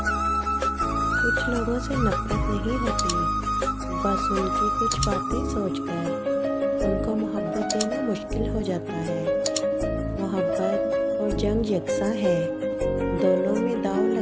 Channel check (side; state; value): both; identical; correlation 1.00